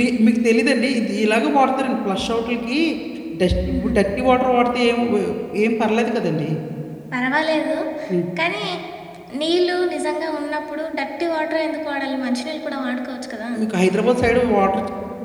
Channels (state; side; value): identical; both; correlation 1.00